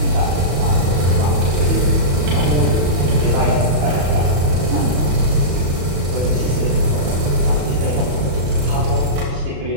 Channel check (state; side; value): late; left; 35 ms